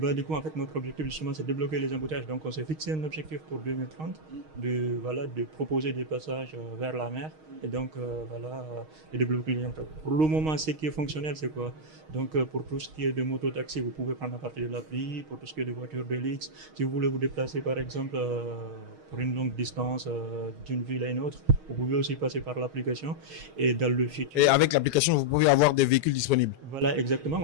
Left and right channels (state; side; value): late; left; 6.4 ms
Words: du coup, en fait, notre objectif, justement, c'est de débloquer les embouteillages. Donc, on s'est fixé un objectif pour 2030 de proposer des passages vers la mer. Et donc, de développer les embouteillages. Pour le moment, ce qui est fonctionnel, c'est quoi? Donc, pour tout ce qui est de moto-taxi, vous pouvez prendre à partir de l'appli. Pour tout ce qui est de voitures de luxe, si vous voulez vous déplacer, par exemple, pour une longue distance d'une ville à une autre, vous pouvez aussi passer par l'application. Et dans le futur. Et avec l'application, vous pouvez avoir des véhicules disponibles. Voilà, exactement.